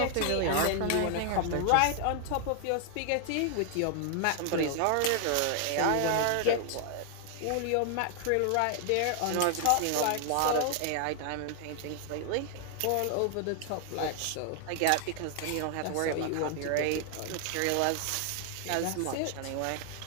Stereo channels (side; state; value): both; different; correlation 0.00